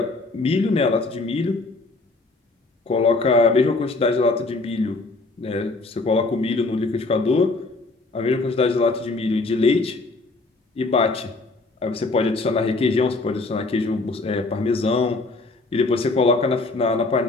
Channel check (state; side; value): quieter; right; 3.3 dB